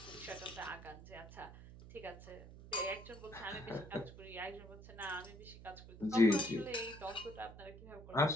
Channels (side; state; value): right; noise; hum, 15 dB below the sound